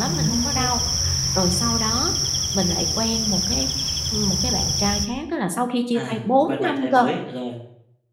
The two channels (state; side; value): identical; both; correlation 1.00